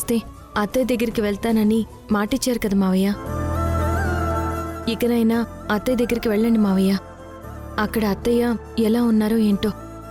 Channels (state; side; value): identical; both; correlation 1.00